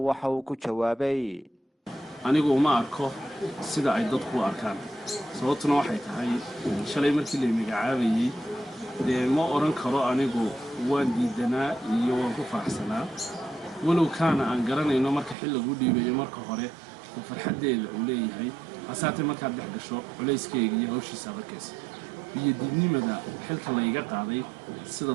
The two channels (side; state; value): left; drops out; at 15.4 s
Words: uu ku jawaabay anigu ma arko sida ay dadku arkaan sababtuna waxay tahay shalay markii la magacaabayay ma oran karo anigu waan diidanaa iyo waan ku faraxsanaa walow kaana aan garanayno marka xil lagu dhiibayo marka hore farxadeeda uu leeyahay asaatay marka dhex gasho culeyskeega iyo hawshiisa adkeys biyadiidnimada xilka la iga qaaday sida